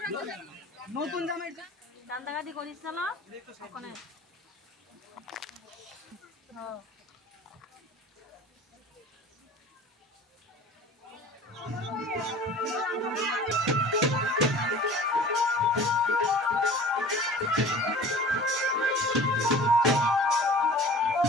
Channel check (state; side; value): normal; both; correlation 0.43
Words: নতুন জামাই কান্দাকাটি করিস না ওখানে